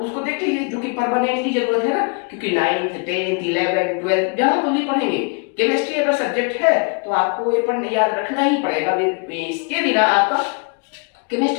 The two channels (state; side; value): quieter; right; 36.4 dB